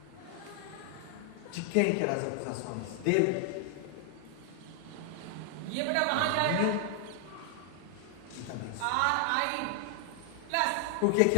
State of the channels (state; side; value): different; both; correlation 0.00